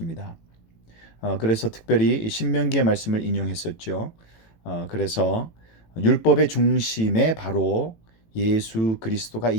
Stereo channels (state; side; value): late; right; 18 ms